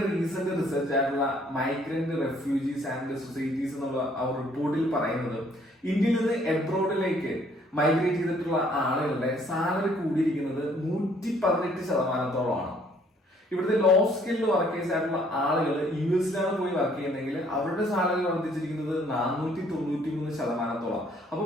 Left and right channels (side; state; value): both; normal; correlation 0.62